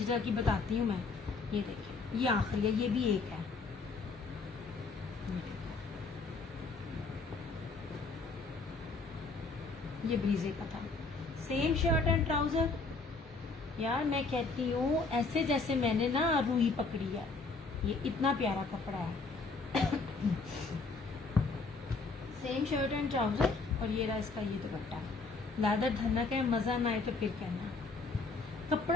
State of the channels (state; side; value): quieter; right; 4.0 dB